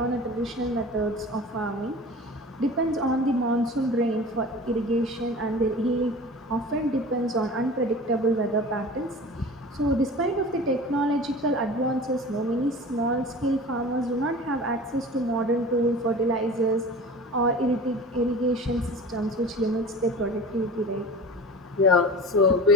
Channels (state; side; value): normal; both; correlation 0.37